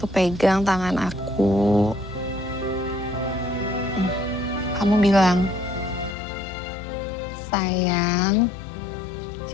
pegang tangan aku. Kamu bilang, sayang,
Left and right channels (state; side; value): drops out; right; at 6.2 s